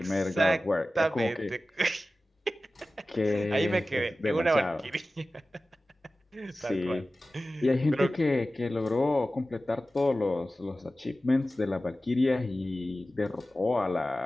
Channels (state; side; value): normal; both; correlation 0.95